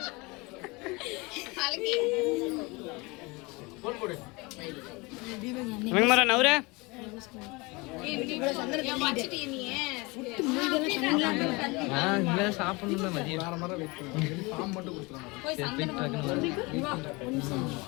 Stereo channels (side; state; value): right; quieter; 25.6 dB